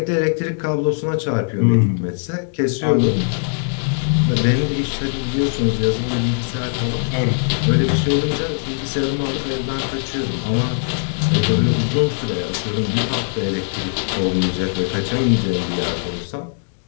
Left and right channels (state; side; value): silent; right; 66 dB below the other